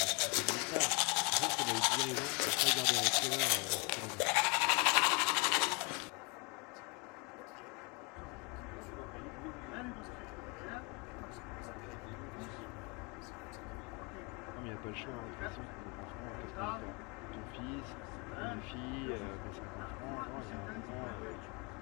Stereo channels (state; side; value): quieter; right; 32.4 dB